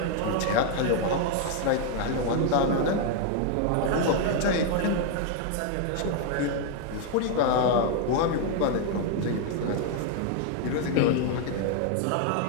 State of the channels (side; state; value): both; different; correlation 0.00